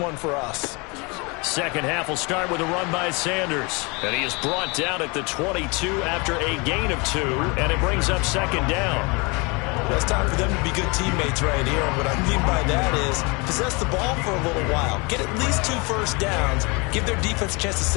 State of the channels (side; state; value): right; quieter; 28.8 dB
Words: for us. 2nd half will start with a run by Sanders. And he is brought down at the 22 after a gain of 2, and it brings up 2nd down. Well, it's time for them to be good teammates right here. And what I mean by that is possess the ball for a little while. Get at least 2 first downs. Give their defense a chance to